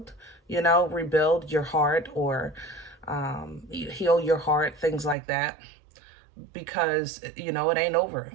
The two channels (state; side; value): drops out; left; at 5.2 s